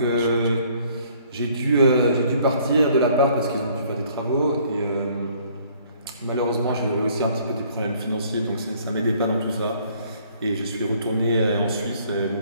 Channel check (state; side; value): inverted; both; correlation -0.60